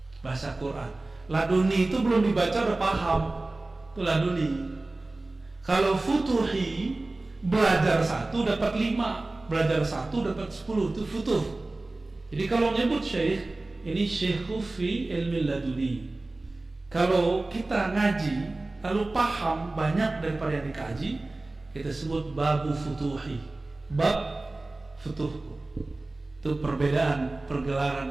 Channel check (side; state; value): left; quieter; 3.0 dB